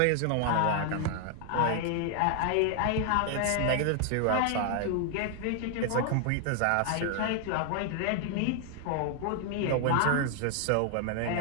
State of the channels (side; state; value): both; different; correlation 0.00